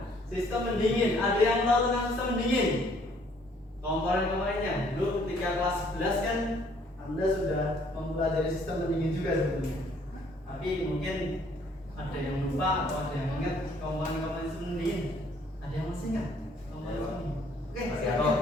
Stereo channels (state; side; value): normal; both; correlation 0.62